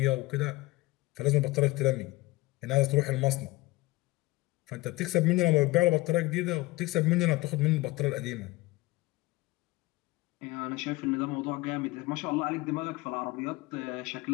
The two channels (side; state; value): right; quieter; 20.3 dB